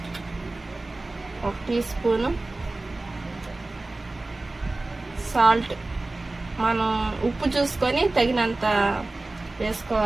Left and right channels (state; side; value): quieter; left; 3.0 dB